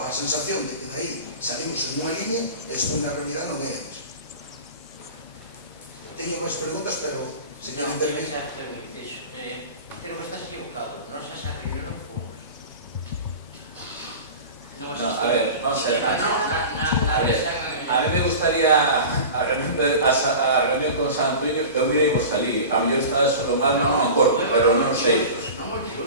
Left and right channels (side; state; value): both; inverted; correlation -0.34